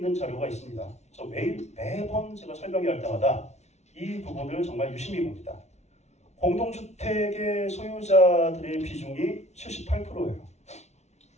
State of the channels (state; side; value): late; right; 0.32 ms